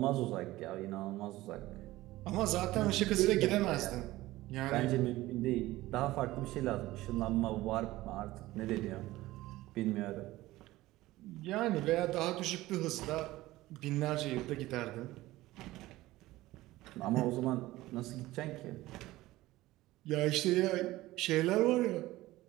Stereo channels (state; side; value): quieter; left; 17.5 dB